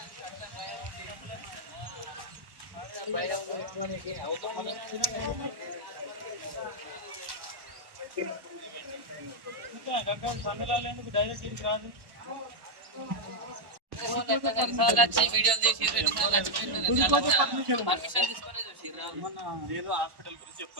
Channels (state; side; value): late; left; 1.1 ms